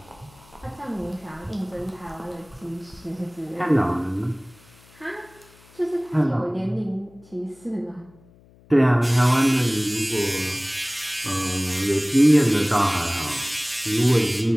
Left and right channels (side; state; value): left; noise; hum, 27 dB below the sound